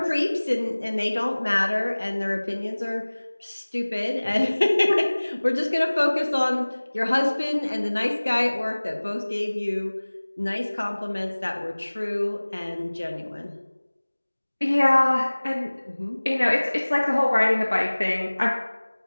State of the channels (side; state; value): both; inverted; correlation -1.00